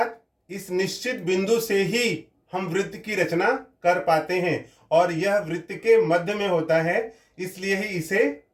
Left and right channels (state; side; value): identical; both; correlation 1.00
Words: इस निश्चित बिंदु से ही हम वृत्त की रचना कर पाते हैं और यह वृत्त के मध्य में होता है, इसलिए ही इसे